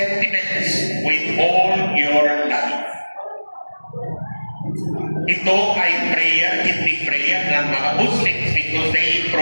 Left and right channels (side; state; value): both; inverted; correlation -1.00